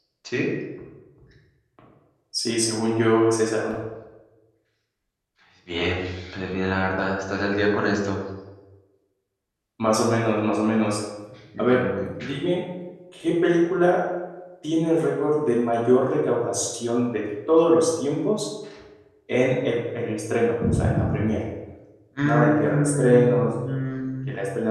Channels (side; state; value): both; identical; correlation 1.00